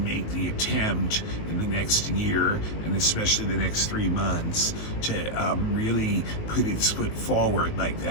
the attempt in the next year and especially the next 3 months to really put its foot forward like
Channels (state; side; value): late; right; 19 ms